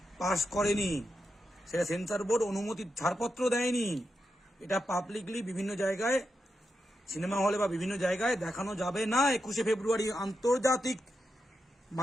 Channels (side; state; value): both; normal; correlation 0.87